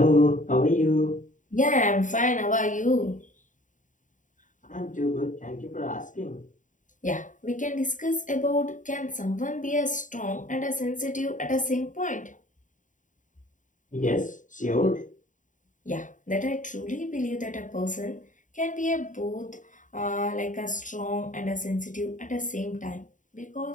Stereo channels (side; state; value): right; late; 0.37 ms